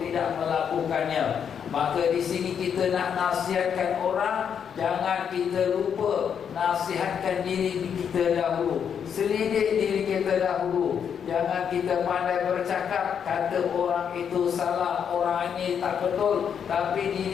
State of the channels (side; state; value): right; quieter; 7.7 dB